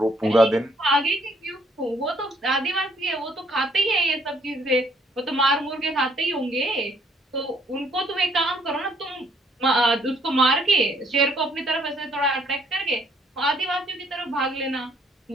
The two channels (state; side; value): normal; both; correlation 0.66